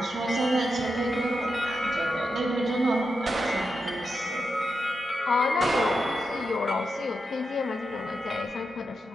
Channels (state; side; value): normal; both; correlation 0.87